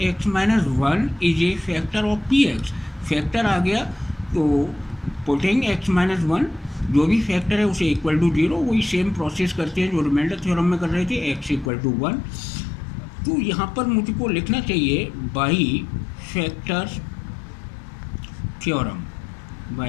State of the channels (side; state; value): right; drops out; at 11.7 s